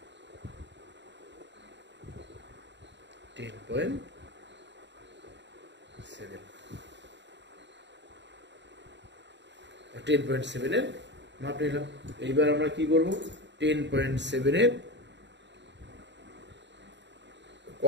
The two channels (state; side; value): late; left; 0.52 ms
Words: 10.7 এর মাপ নিলাম। এইবার আমরা কি করব, 10.7 এর